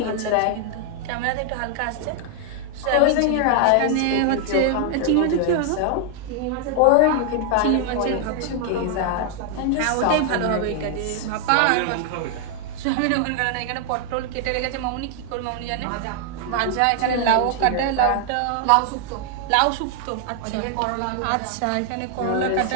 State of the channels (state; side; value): different; both; correlation 0.00